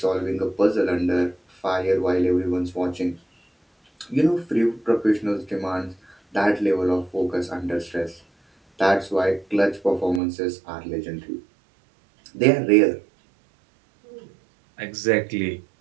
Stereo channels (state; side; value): drops out; left; at 10.2 s